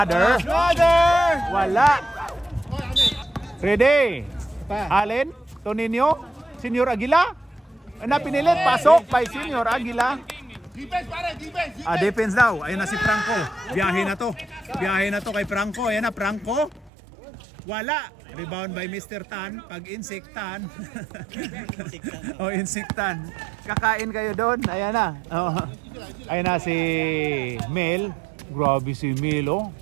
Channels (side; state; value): left; drops out; at 16.9 s